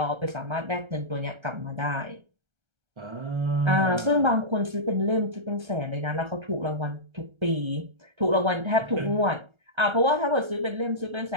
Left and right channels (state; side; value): late; left; 1.3 ms